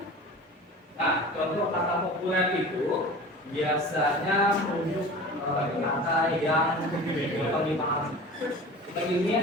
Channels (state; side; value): normal; both; correlation 0.38